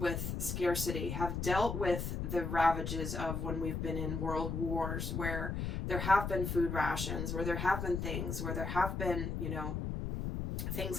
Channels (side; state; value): left; noise; rumble, 2 dB below the sound